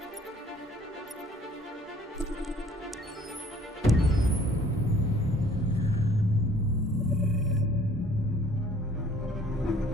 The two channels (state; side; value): normal; both; correlation 0.56